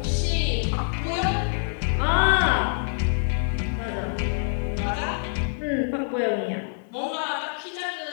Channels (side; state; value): right; silent; digital silence